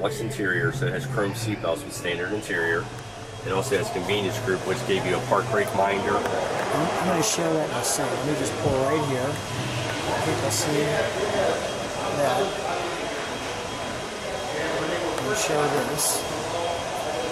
interior, so it has chrome seatbelts with standard interior. It also has convenience group, which gave you a park brake minder. I'm going to show that in a second. Let me just pull right here. People see that. Let me show this.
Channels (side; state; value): both; identical; correlation 1.00